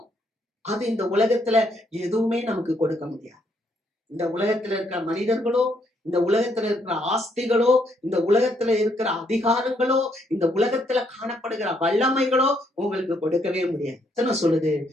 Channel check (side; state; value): both; normal; correlation 0.73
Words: அது இந்த உலகத்துல எதுவுமே நமக்கு கொடுக்க முடியாது. இந்த உலகத்துல இருக்கிற மனிதர்களோ, இந்த உலகத்துல இருக்கிற ஆஸ்திகளோ, இந்த உலகத்துல இருக்கிற அதிகாரங்களோ, இந்த உலகத்துல காணப்படுகிற வல்லமைகளோ உங்களுக்கு கொடுக்கவே முடியாது. எத்தனை சொல்லுது?